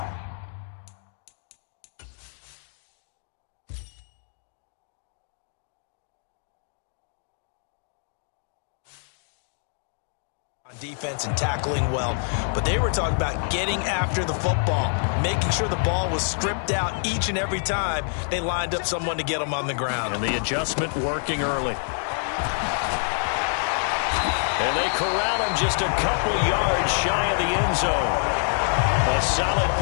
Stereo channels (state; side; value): silent; right; 61 dB below the other